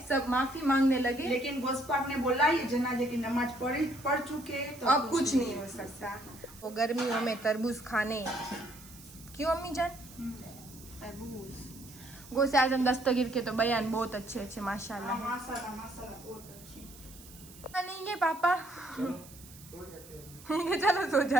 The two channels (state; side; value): noise; right; hiss, 19 dB below the sound